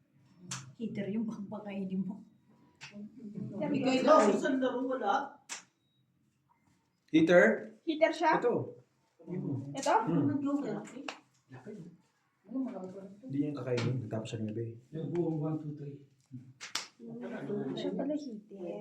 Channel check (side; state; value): both; identical; correlation 1.00